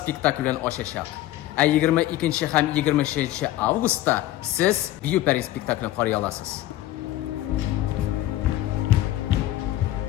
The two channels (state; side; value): quieter; right; 14.7 dB